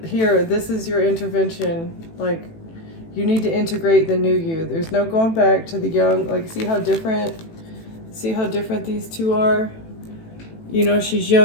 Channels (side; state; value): right; late; 18 ms